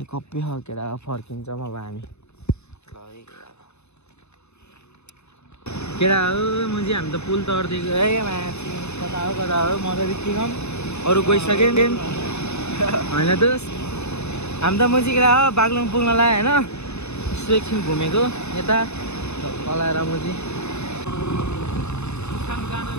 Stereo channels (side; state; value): right; late; 0.81 ms